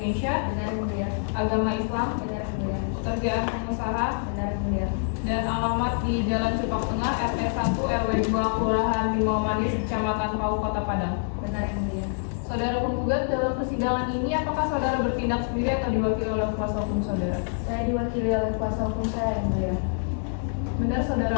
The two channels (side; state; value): right; silent; 61 dB below the other